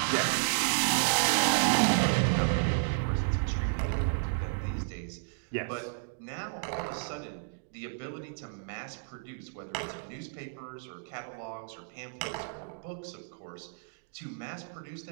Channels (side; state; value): left; silent; digital silence